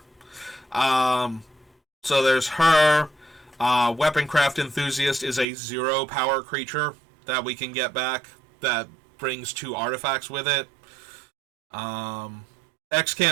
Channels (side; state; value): left; drops out; at 5.5 s